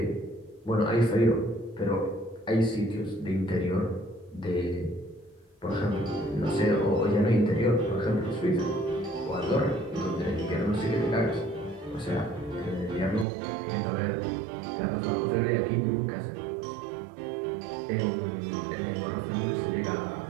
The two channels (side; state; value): left; drops out; at 13.2 s